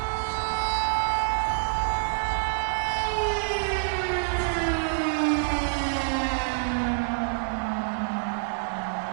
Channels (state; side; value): silent; left; digital silence